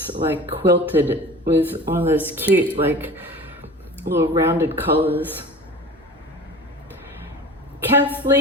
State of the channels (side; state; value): both; normal; correlation 0.38